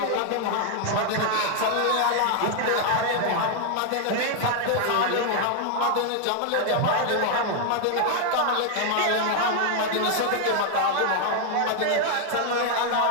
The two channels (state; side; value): different; both; correlation 0.00